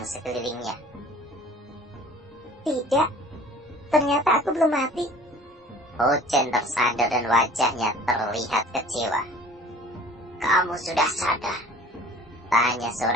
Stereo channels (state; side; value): normal; both; correlation 0.48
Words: sekelilingnya. Tidak, ternyata aku belum mati. Ho Chen tersadar dan wajahnya terlihat kecewa. Kamu sudah sadar? Tanya